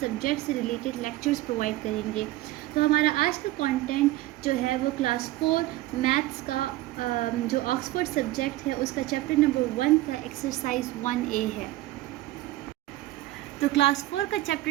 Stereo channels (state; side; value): quieter; left; 17.0 dB